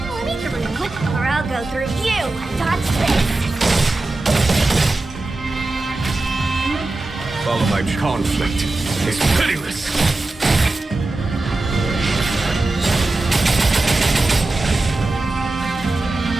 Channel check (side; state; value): left; quieter; 3.0 dB